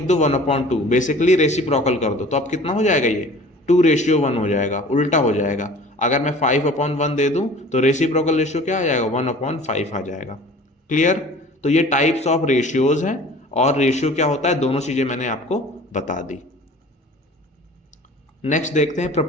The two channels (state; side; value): normal; both; correlation 0.45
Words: दो 1/2, बेसिकली रेसिप्रोकल कर दो, तो अब कितना हो जाएगा, ये 2:1 हो जाएगा, उल्टा हो जाएगा। अगर मैं 5/1 दे दूं तो रेसिप्रोकल रेशियो क्या आ जाएगा, 1/5 आ जाएगा। क्लियर। तो ये टाइप्स ऑफ रेशियोज हैं, और रेशियो क्या होता है, दोनों चीजें मैंने आपको बता दी। नेक्स्ट देखते हैं